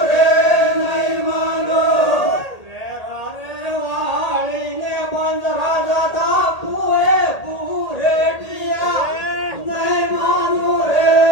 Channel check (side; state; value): right; late; 1.8 ms